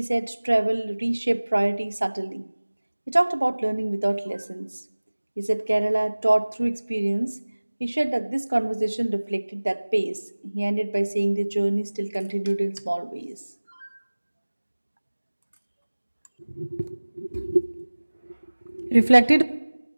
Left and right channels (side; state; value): both; inverted; correlation -1.00